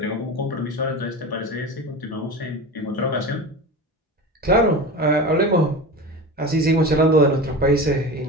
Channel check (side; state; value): both; normal; correlation 0.29